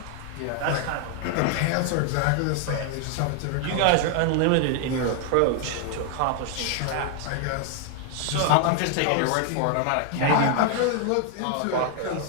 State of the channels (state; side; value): different; both; correlation 0.00